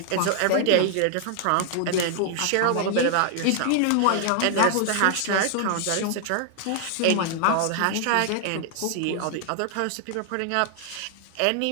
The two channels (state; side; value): different; both; correlation 0.00